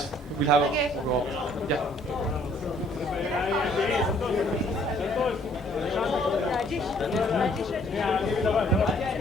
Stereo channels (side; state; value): both; normal; correlation 0.61